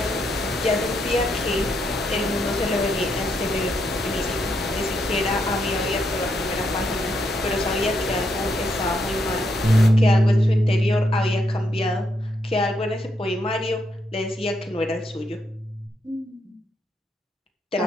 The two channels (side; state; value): both; normal; correlation 0.78